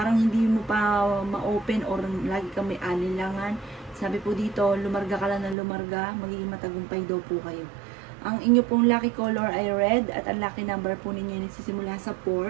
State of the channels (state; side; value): drops out; left; at 5.6 s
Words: hindi mo pa ma-open or lagi kang may alinlangan. Sabi po dito, lumarga ka lang ng lumarga, magiging matagumpay daw po kayo. Ang inyo pong lucky color ay red at ang lucky number po ninyo ay nagsisimula sa